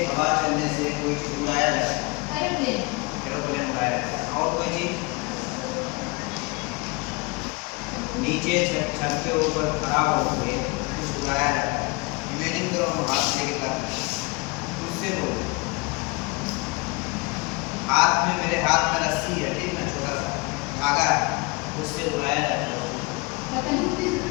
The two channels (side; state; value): right; quieter; 27.7 dB